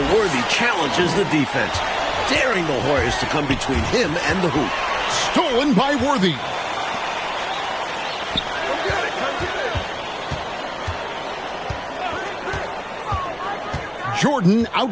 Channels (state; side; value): identical; both; correlation 1.00